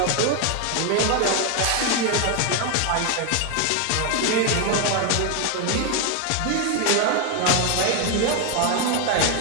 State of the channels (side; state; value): both; different; correlation 0.01